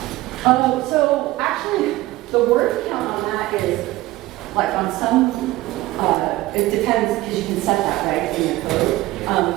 count? So actually, the word count on that is like on some, it depends because you can set that right in your code.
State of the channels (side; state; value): left; quieter; 18.0 dB